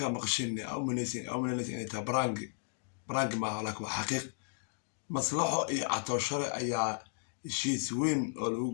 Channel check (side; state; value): right; silent; digital silence